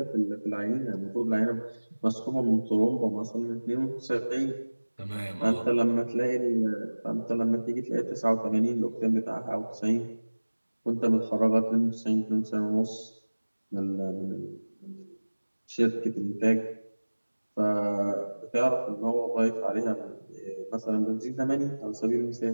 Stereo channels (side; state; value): both; inverted; correlation -1.00